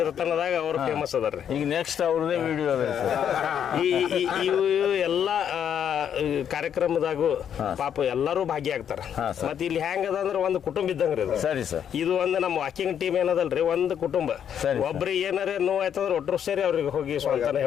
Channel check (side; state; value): right; quieter; 8.8 dB